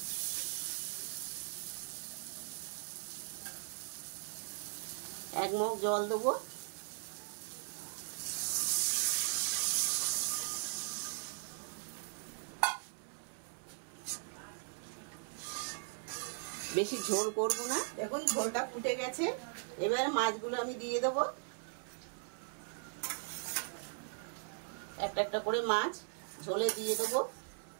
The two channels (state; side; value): silent; left; 52 dB below the other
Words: এক মগ জল দেবো। বেশি ঝোল করব না। দেখুন ঝোলটা ফুটে গেছে। এবারে মাছগুলো আমি দিয়ে দেবো। একটা একটা করে মাছ ঝোলে দিয়ে দেবো।